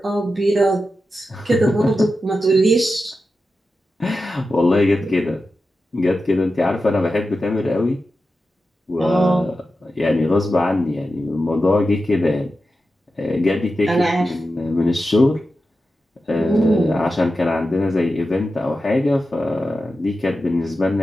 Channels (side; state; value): both; normal; correlation 0.91